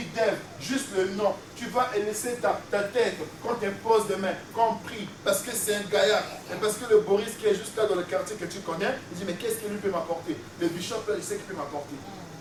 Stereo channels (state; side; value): identical; both; correlation 1.00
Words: d'Ève, juste le nom, tu vas laisser ta tête quand tu poses des mains, quand on prie, parce que c'est un gaillard, et parce que le Boris qui est juste là dans le quartier que tu connais, il dit, mais qu'est-ce qu'il lui peut m'apporter? Le bishop là, il sait qu'il peut m'apporter.